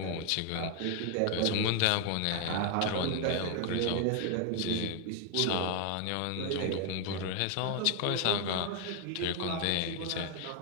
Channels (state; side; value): different; both; correlation 0.00